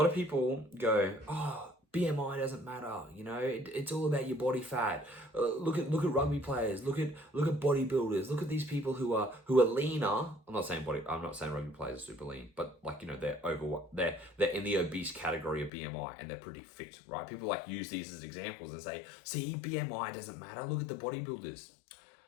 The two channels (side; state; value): right; drops out; at 15.7 s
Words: of people go, oh, BMI doesn't matter, you know, it's all about your body fat. Look at rugby players, look at bodybuilders, look at these people who are leaner. I'm not saying rugby players are super lean, but like, you know, they're in the obese category of BMI and they're pretty fit, right? People like use these as examples and say, see, BMI doesn't matter. Look at the bodybuilders.